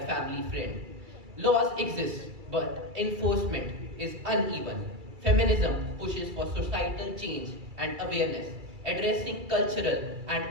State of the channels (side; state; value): left; late; 2.3 ms